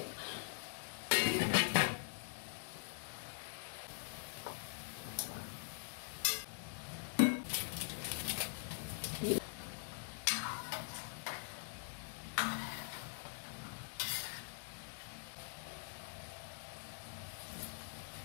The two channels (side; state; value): right; silent; digital silence